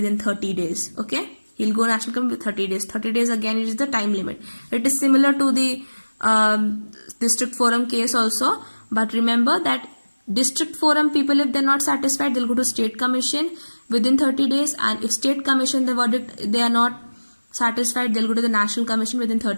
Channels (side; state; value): both; inverted; correlation -1.00